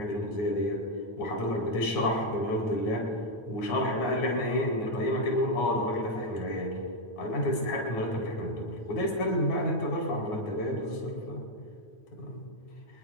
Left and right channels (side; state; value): right; late; 9.5 ms